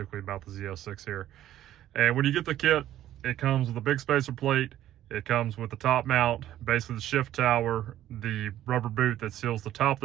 about the ZF6 here. And when you get the kit, it comes with a big spacer plate. It comes with the top mount, basically the shift tower, the rubber boot that seals the top of the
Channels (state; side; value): quieter; left; 12.7 dB